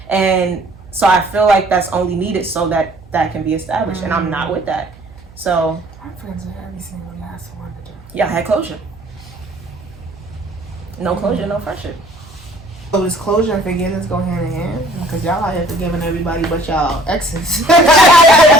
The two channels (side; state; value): right; noise; hum, 22 dB below the sound